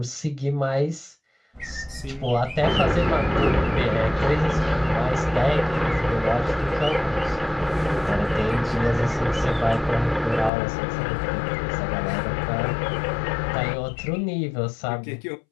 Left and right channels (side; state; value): right; drops out; at 10.5 s